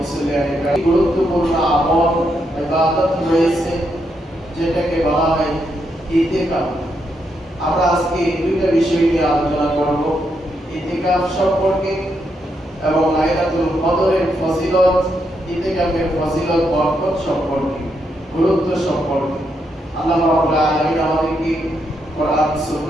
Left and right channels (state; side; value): normal; both; correlation 0.80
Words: মুসলিয়ানে গুরুত্বপূর্ণ আমল ইবাদত রয়েছে যেটাকে বলা হয় ইতিকাফ। আমরা আজকে দুইটা বিষয় নিয়ে আলোচনা করব, ইতিকাফ সম্পর্কে এবং লাইলাতুল কদরের ফজিলত, ইতিকাফের ফজিলত বরকত সম্পর্কে, গুরুত্ব সম্পর্কে। আল্লাহ রাব্বুল আলামিন আমাদেরকে কোরআন